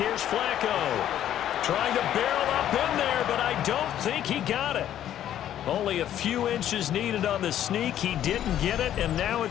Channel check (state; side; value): quieter; right; 11.2 dB